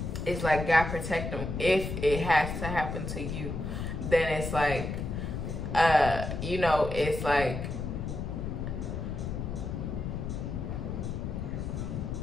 It's like God protect them. If it has to happen to you, then it's like, you know, it's like,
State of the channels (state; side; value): noise; left; rumble, 4 dB below the sound